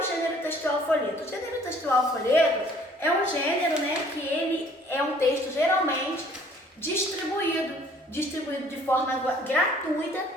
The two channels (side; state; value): both; normal; correlation 0.57